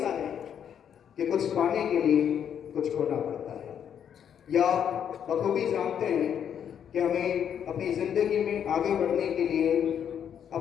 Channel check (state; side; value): quieter; right; 8.7 dB